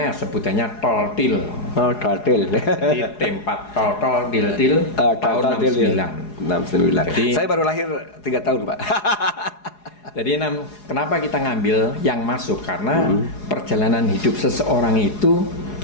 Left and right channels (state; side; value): late; right; 4.8 ms